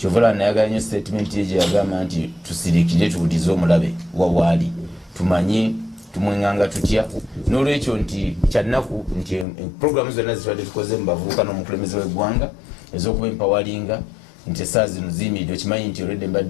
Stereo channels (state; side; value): drops out; right; at 9.5 s